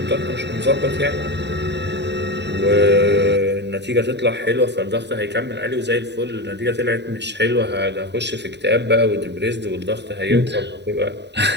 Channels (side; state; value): left; late; 0.50 ms